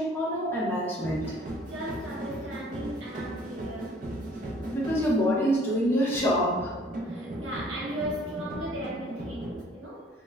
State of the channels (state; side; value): normal; both; correlation 0.56